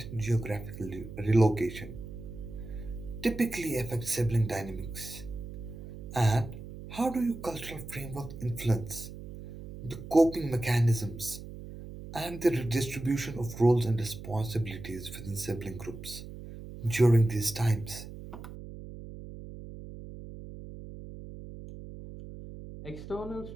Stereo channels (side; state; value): right; noise; hum, 12 dB below the sound